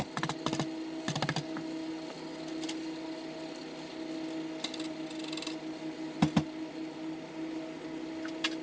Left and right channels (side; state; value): both; identical; correlation 1.00